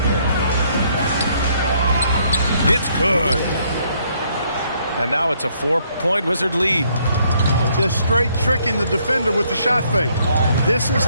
It's good. And now it's a 4-point Wizard lead. Just straight tricking the defender with the shot fake. This is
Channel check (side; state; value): both; inverted; correlation -0.69